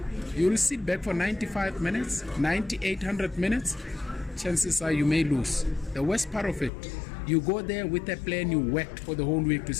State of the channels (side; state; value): right; drops out; at 6.7 s